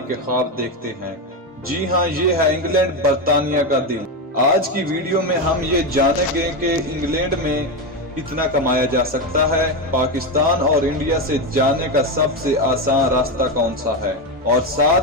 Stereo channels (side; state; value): both; normal; correlation 0.12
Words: के ख्वाब देखते हैं। जी हाँ, ये है इंग्लैंड, बर्तानिया का दिल। आज की वीडियो में हम ये जानेंगे कि इंग्लैंड में कितना कमाया जा सकता है, पाकिस्तान और इंडिया से जाने का सबसे आसान रास्ता कौन सा है, और